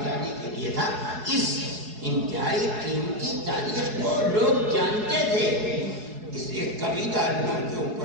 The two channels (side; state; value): left; late; 4.7 ms